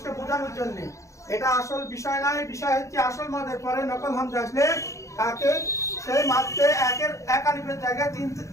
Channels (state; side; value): late; right; 0.15 ms